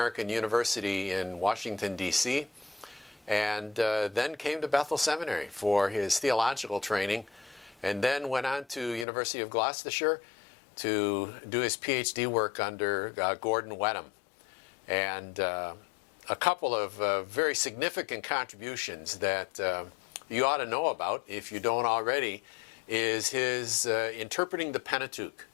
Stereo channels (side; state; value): right; drops out; at 9.1 s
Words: University in Washington, D.C., and then came to Bethel Seminary for his theological training, and then went on to University of Gloucestershire to do his PhD work under Gordon Wenham. And a couple of very significant contributions that you ought to know about, if you don't already, is his Interpreting the Pentateuch,